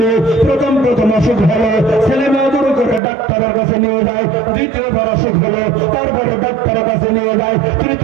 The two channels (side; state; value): left; drops out; at 3.0 s